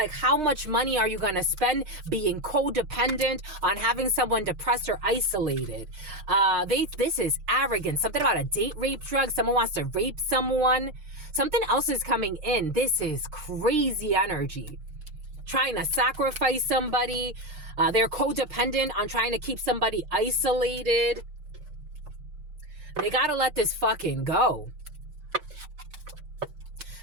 how much money are you going to spend being codependent on having someone depressed or isolated? This is arrogant. Something about a date rape drug. Someone wants to rape someone. Something else is coming in. This is crazy energy. Trying to sacrifice somebody. They're codependent on trying to keep somebody isolated. They gotta let this fucking go.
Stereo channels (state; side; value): late; left; 6.5 ms